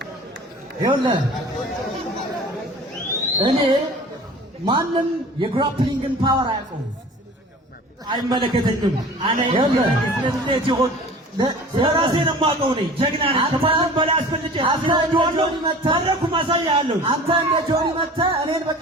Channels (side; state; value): both; normal; correlation 0.42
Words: ይኸውልህ እኔ ማንም የግራፕሊንግን ፓወር አያውቀውም። አይመለከተኝም። አነ ስለዚህ ይሁን ስለራሴ ነው የማውቀው። እኔ ጀግና ነኝ። ከማንም በላይ አስፈልጬ አስፈልጬዋለሁ። መድረኩ ማሳያለሁ። አንተ እንደ ጆኒ መተህ እኔን